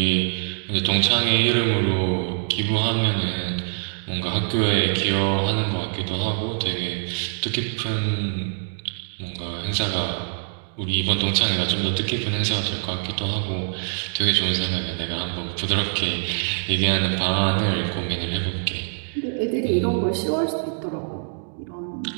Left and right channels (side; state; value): left; silent; digital silence